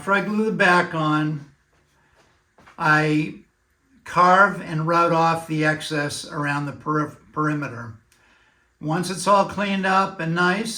I glue the back on, I carve and route off the excess around the perimeter. Once it's all cleaned up and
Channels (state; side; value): identical; both; correlation 1.00